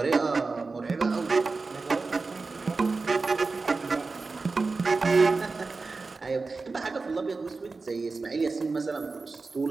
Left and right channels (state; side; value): quieter; left; 4.0 dB